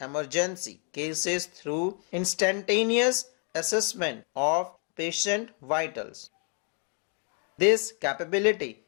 cases through instantaneous assessment of patient vitals. This capability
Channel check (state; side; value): quieter; right; 39.9 dB